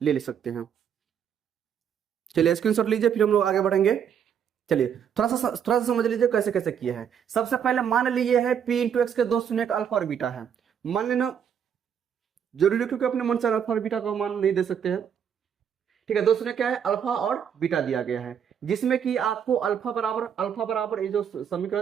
ले सकते हैं। चलिए स्क्रीनशॉट लीजिए, फिर हम लोग आगे बढ़ेंगे। चलिए थोड़ा सा समझ लीजिए कैसे कैसे किया है। सबसे पहले मान लीजिए है p इंटू एक्स के 2 शून्य अल्फा और बीटा है, मान लेना जरूरी, क्योंकि अपने मन से अल्फा और बीटा का मान नहीं दे सकते हैं। ठीक है, 2 शून्य क्या है, अल्फा और बीटा दिया गया है, जिसमें कि आपको अल्फा बराबर ये जो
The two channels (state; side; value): quieter; left; 8.2 dB